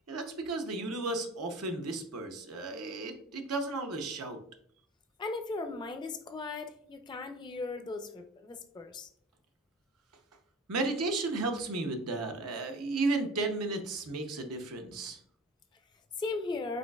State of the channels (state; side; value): normal; both; correlation 0.40